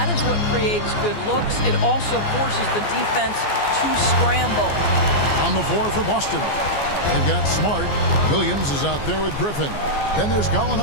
is what creates good looks. It also forces the defense to scramble. On the floor for Boston. They've got Smart. Williams is out there with Griffin. Then there's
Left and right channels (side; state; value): right; late; 14 ms